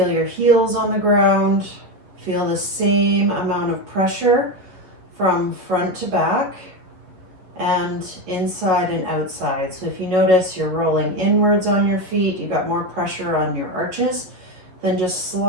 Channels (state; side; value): late; left; 11 ms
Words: your heels on the ground. Feel the same amount of pressure from front to back and inside and outside. So if you notice you're rolling inwards on your feet, you've got more pressure on your arches, then just